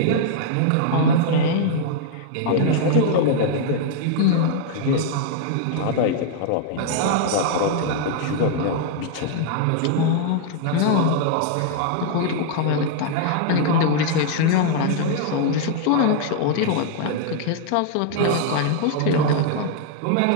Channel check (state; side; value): different; both; correlation -0.01